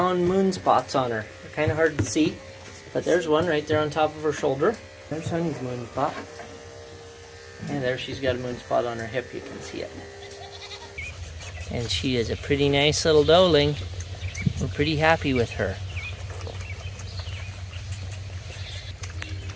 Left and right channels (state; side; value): identical; both; correlation 1.00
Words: moon spots on her. They're kind of hard to see, but there's one right there on top of her shoulder. There's Honey's moon spot, and there she's got a moon spot on her hip. You can see it. And she is a pretty nice little doeling. We're pretty happy with her.